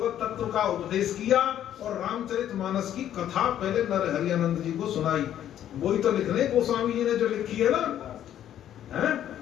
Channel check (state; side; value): quieter; right; 11.0 dB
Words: तत्व का उपदेश किया और रामचरितमानस की कथा पहले नरहरियानंद जी को सुनाई। वही तो लिखने गोस्वामी जी ने जो लिखी है ना, है?